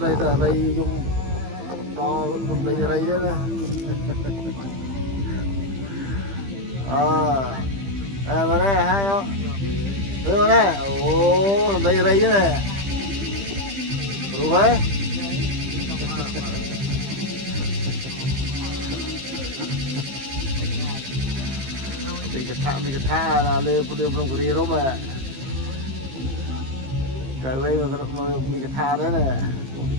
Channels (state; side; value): late; left; 15 ms